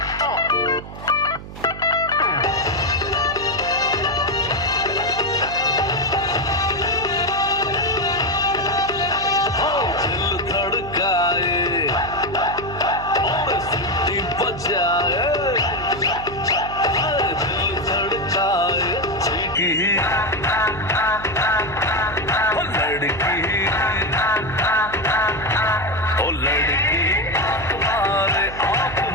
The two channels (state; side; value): noise; right; hum, 13 dB below the sound